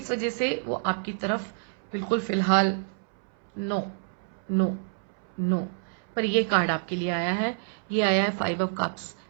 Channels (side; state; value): left; silent; 59 dB below the other